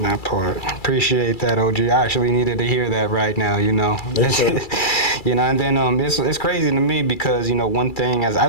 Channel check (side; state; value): right; late; 2.3 ms